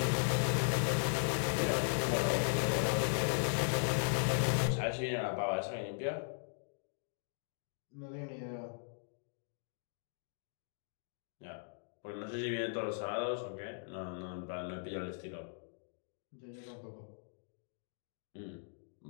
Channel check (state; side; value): silent; right; digital silence